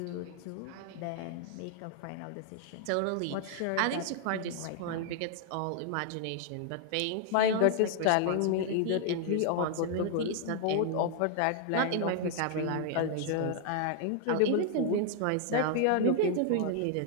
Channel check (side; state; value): both; different; correlation 0.00